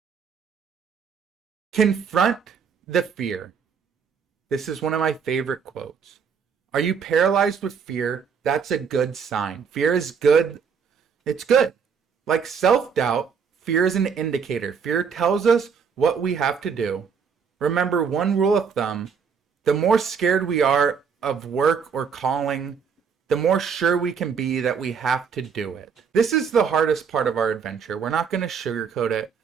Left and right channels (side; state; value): left; quieter; 6.4 dB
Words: Confront the fear. This is one of my favorite quotes. Are you paralyzed with fear? That's a good sign. Fear is good. It's good. Like self-doubt, fear is an indicator. Fear tells us what we have to do. Remember, one rule of thumb, the more scared we are of work or calling, the more sure we can be that we have to do it. This is the hardest part of our adventure. We're not going to sugarcoat it.